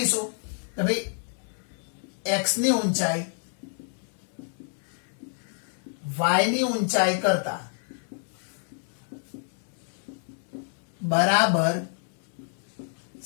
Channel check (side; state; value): right; silent; digital silence